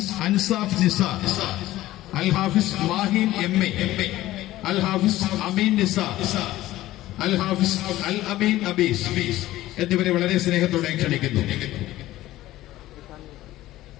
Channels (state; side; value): quieter; right; 15.6 dB